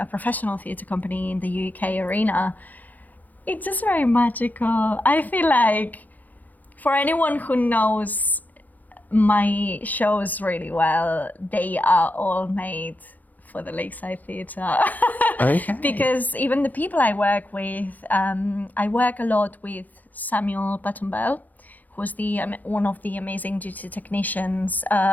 professional theatre company in the UK arena, it's just very magical. I feel like for anyone who knows my shows really well, they are all made for the Lakeside Theatre. Okay. Because even the people I work with, I work a lot with Samuel Buttonbell, who's one of the amazing duty technicians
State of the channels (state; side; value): late; right; 0.082 ms